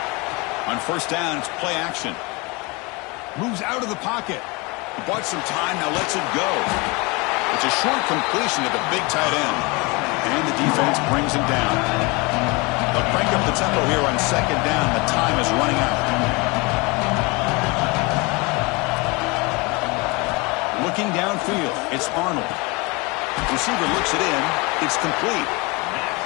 On first down, it's play action. Moves out of the pocket. Bought some time, now lets it go. It's a short completion to the big tight end. And the defense brings him down. They'll crank up the tempo here on second down. The time is running out. Looking downfield, it's Arnold. Receiver looks it in. It's complete.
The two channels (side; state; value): right; quieter; 26.9 dB